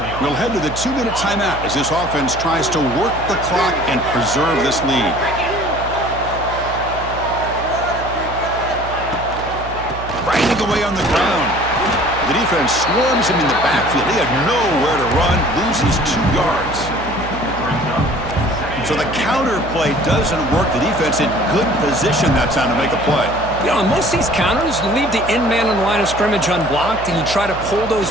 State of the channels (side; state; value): right; noise; hum, 11 dB below the sound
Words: We'll head to the 2-minute timeout as this offense tries to work the clock and preserve this lead. Grinding away on the ground. The defense swarms him in the backfield. He had nowhere to run, loses 2 yards. So the counter play doesn't work. The defense in good position that time to make a play. You know, on most of these counters, you leave the end man on the line of scrimmage unblocked, and you try to pull those